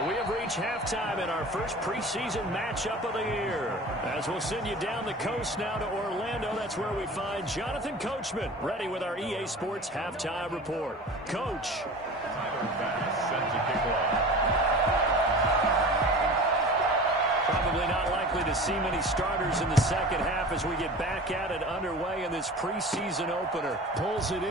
we have reached halftime in our first preseason matchup of the year. As we'll send you down the coast now to Orlando, that's where we find Jonathan Coachman, ready with our EA Sports Halftime Report. Coach. Tyler Bass set to kick off. Probably not likely to see many starters in the second half as we get back at it underway in this preseason opener. Pulls it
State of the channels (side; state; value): both; normal; correlation 0.37